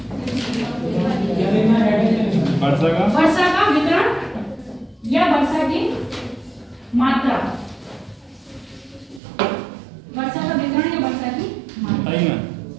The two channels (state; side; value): drops out; left; at 9.2 s